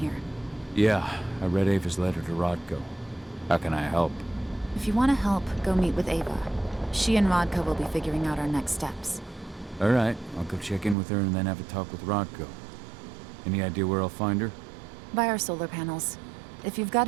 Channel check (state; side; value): drops out; left; at 11.0 s